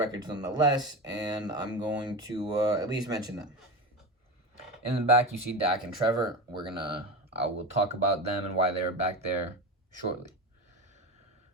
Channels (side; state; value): both; normal; correlation 0.24